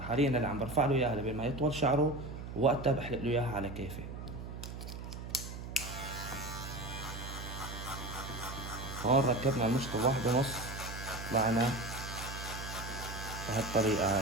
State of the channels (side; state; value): right; noise; hum, 9 dB below the sound